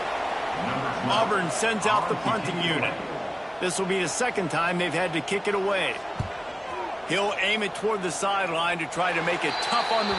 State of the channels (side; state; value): both; identical; correlation 1.00